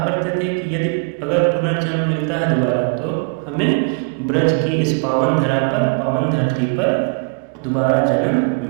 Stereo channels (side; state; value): left; quieter; 35.0 dB